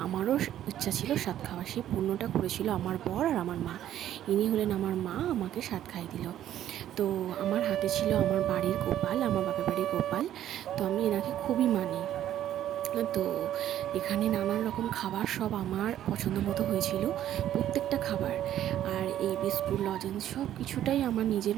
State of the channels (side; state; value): left; quieter; 11.7 dB